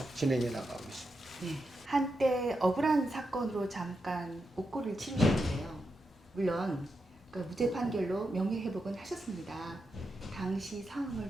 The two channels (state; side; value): normal; both; correlation 0.86